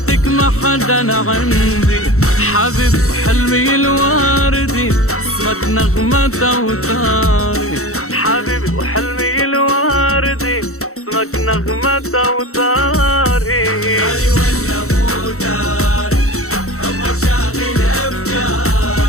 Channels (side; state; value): right; late; 0.64 ms